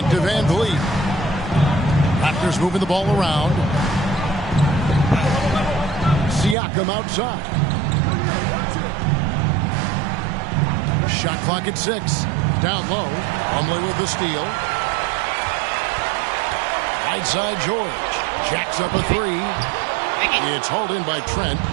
to VanVleet. Raptors moving the ball around. Siakam outside. Shot clock at 6. Down low. Plumlee with the steal. Right side George. Jacks up a 3. It's hauled in by Trent.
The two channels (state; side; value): drops out; left; at 6.6 s